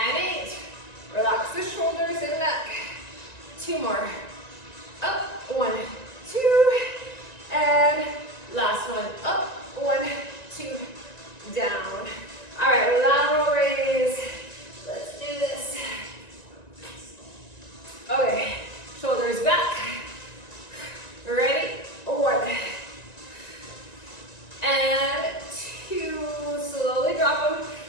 8. Relax the shoulders and neck. 2 more. Up, 1, 2, and last one. Up, 1, 2, down. All right, lateral raise. Let's do this. Okay, shoulders back. Ready? 1, and 2. Slowly drop them,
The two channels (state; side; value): late; right; 1.9 ms